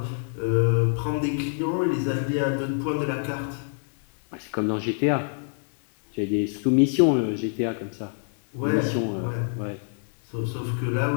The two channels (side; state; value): right; silent; digital silence